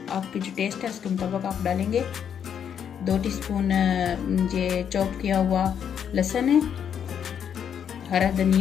आपकी जो टेस्ट है उसके मुताबिक आप डालेंगे, 2 टीस्पून ये चॉप किया हुआ लहसुन है, हरा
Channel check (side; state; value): right; quieter; 8.3 dB